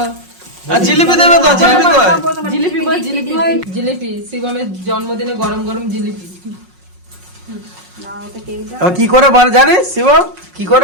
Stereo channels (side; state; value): left; late; 5.5 ms